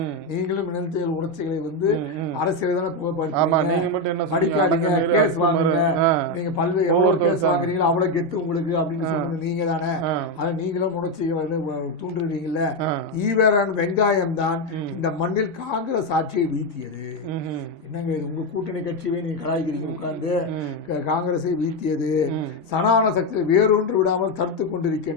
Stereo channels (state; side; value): normal; both; correlation 0.08